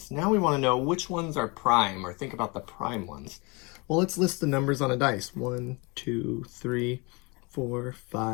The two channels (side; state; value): right; quieter; 28.3 dB